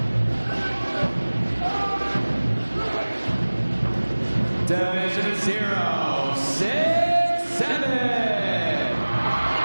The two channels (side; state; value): both; inverted; correlation -1.00